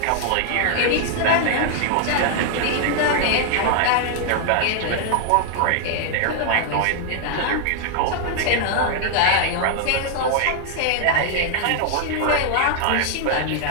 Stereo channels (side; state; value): both; different; correlation 0.00